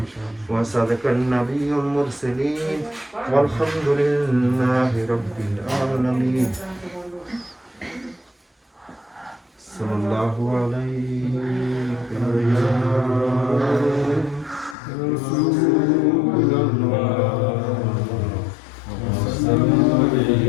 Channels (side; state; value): right; drops out; at 14.8 s